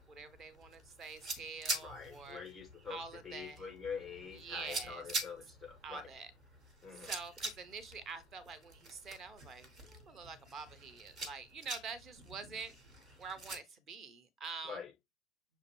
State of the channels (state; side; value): normal; both; correlation 0.51